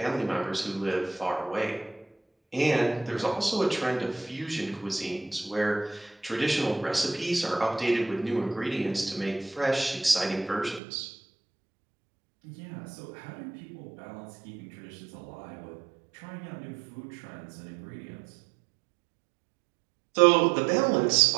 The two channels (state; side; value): drops out; left; at 10.8 s